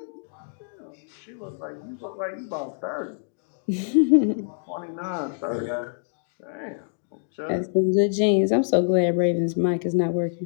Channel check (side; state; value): right; silent; digital silence